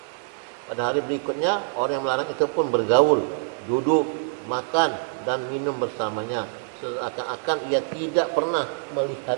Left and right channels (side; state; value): left; silent; 62 dB below the other